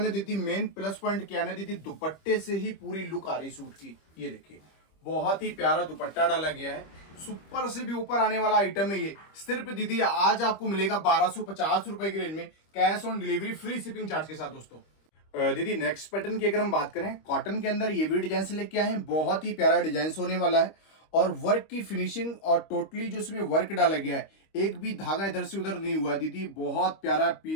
ना दीदी, मेन प्लस पॉइंट क्या है ना दीदी, दुपट्टे से ही पूरी लुक आ रही सूट की। ये देखिए बहुत ही प्यारा दुपट्टा डाला गया है, सुपर से भी ऊपर आने वाला आइटम है ये। सिर्फ दीदी आज आपको मिलेगा 1250 रुपए की रेंज में, cash on delivery, free shipping charge के साथ दोस्तों। दीदी नेक्स्ट पैटर्न की अगर हम बात करें, कॉटन के अंदर ये भी डिजाइन से लेके आए हैं, बहुत ही प्यारा डिजाइन होने वाला है और वर्क की फिनिशिंग और टोटली जो इसमें वर्क डाला गया है, एक भी धागा इधर से उधर नहीं हुआ दीदी, बहुत प्यारा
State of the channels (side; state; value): right; late; 25 ms